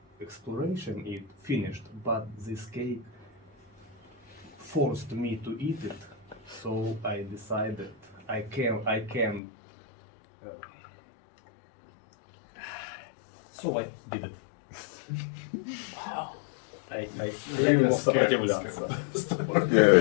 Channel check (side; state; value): right; drops out; at 9.4 s